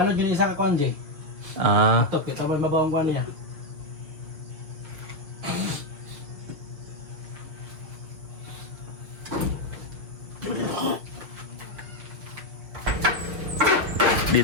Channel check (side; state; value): left; late; 6.4 ms